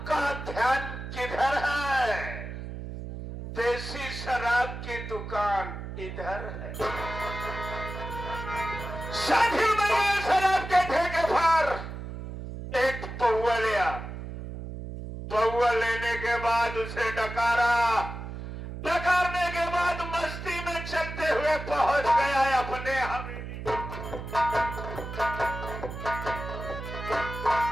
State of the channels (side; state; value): right; noise; hum, 8 dB below the sound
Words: ध्यान किधर है, देसी शराब की दुकान इधर है। साथियों, मैंने शराब के ठेके पर एक पौवा लिया। पौवा लेने के बाद उसे डकारा, डकारने के बाद मस्ती में चलते हुए पहुंच गया अपने हवेली।